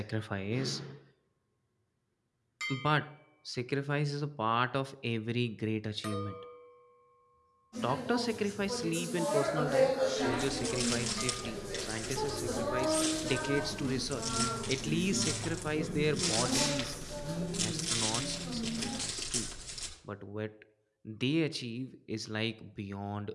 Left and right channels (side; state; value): both; identical; correlation 1.00